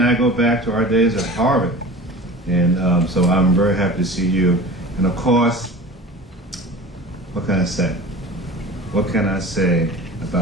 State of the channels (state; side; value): normal; both; correlation 0.37